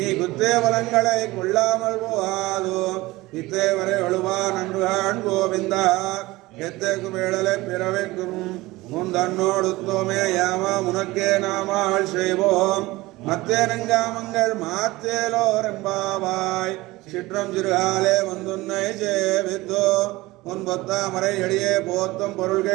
குத்தே வளங்களை கொள்ளாமல் போகாதோ இத்தேவரை ஒழுவா நன்றுகான் கோவிந்தா எத்தேக்கும் வேடலை பிறவைக்கும் முந்தன்னோடுத்தோமே யாமா உனக்கே நாமாள் செய்வோம் மத்தேனங்காமங்கள் மாத்தேலோரெம்பாவாய் சிற்றம் சிறுகாலே வந்துன்னை சேவித்தோ முன்பொத்தாமரை எளியே போத்தும்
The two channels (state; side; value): quieter; left; 19.9 dB